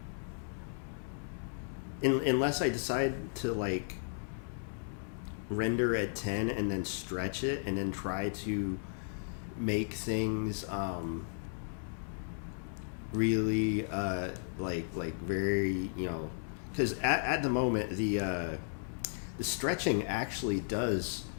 unless I decide to like render at 10 and then stretch it and then try to make things really like very, you know, because at the moment the stretching actually does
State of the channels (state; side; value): silent; right; digital silence